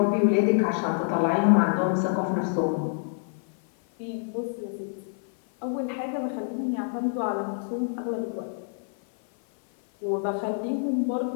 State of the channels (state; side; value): silent; right; 56 dB below the other